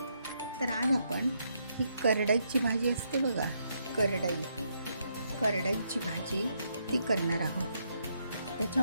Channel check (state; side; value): inverted; both; correlation -0.77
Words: तर आज आपण ही करडईची भाजी असते बघा, करडईची भाजी ती करणार आहोत.